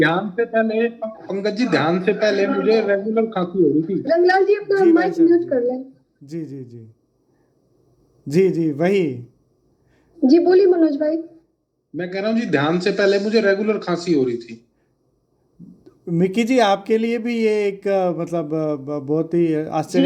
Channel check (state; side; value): identical; both; correlation 1.00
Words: से पहले, पंकज जी, ध्यान से पहले मुझे रेगुलर खांसी हो रही थी। रंगलाल जी अपना जी भाई माइक साहब म्यूट जी। कर लें। जी जी जी। जी जी वही। जी बोलिए मनोज भाई। मैं कह रहा हूँ जी, ध्यान से पहले मुझे रेगुलर खांसी हो रही थी। मिक्की जी आपके लिए भी ये एक मतलब बहुत ही जी,